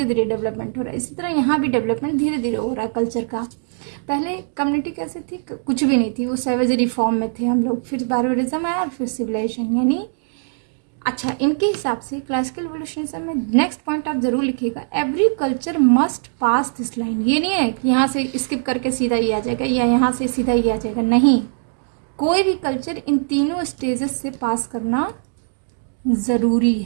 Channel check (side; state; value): left; silent; digital silence